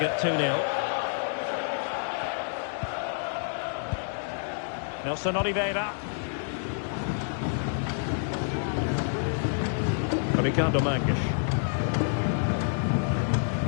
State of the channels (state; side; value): silent; right; digital silence